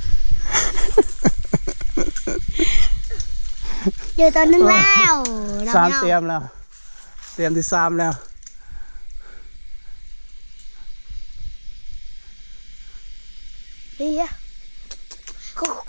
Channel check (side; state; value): both; inverted; correlation -1.00